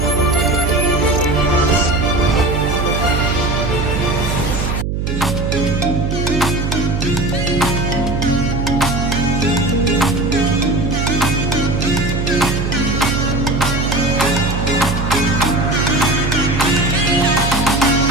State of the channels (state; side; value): noise; right; hum, 1 dB below the sound